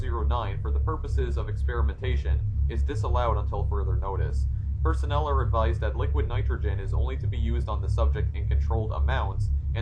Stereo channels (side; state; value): both; identical; correlation 1.00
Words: for the purposes of experimentation is disallowed until further notice. Personnel are advised that liquid nitrogen is only to be used on the subject in controlled amounts